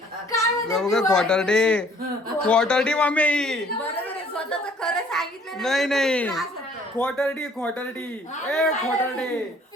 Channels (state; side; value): normal; both; correlation 0.58